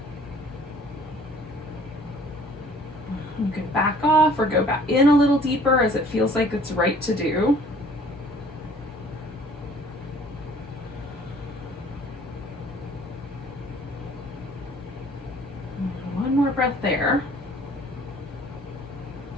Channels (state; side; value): normal; both; correlation 0.54